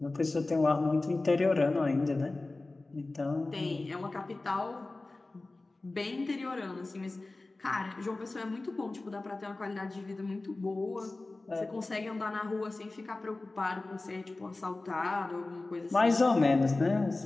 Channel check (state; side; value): quieter; right; 3.1 dB